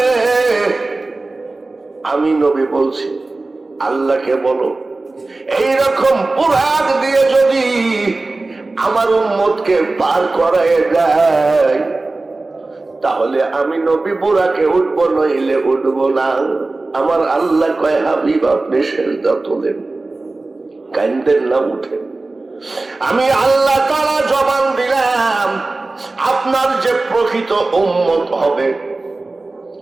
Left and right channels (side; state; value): left; quieter; 3.3 dB